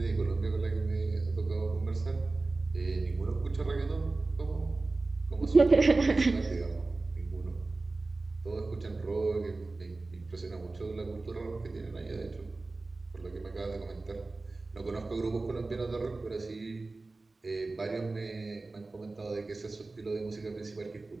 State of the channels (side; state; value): left; quieter; 3.4 dB